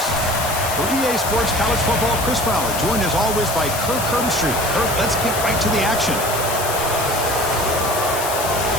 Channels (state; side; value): noise; left; hiss, 5 dB below the sound